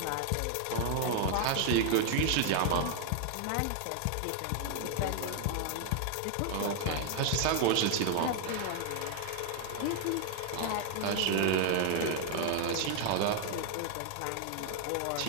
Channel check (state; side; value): different; both; correlation 0.00